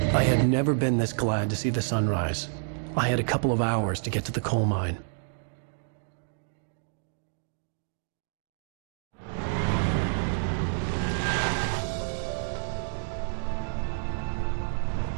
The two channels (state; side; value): silent; left; digital silence